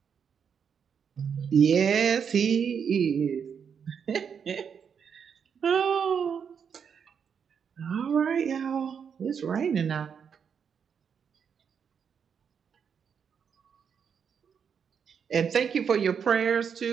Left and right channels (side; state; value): left; quieter; 7.0 dB